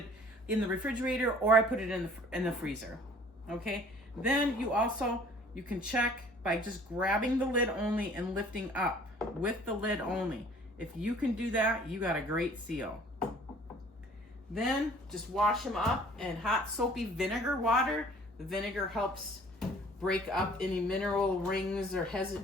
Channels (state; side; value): normal; both; correlation 0.53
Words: in the refrigerator or I put it in the freezer. Okay. Then you can check by just grabbing the lid only and lifting up with the lid only. If you can do that, you got a great seal. Then just wash them up in hot soapy vinegar water. The vinegar helps break up any mineral rings or